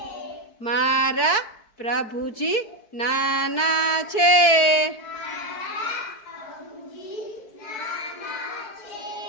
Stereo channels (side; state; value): right; late; 4.6 ms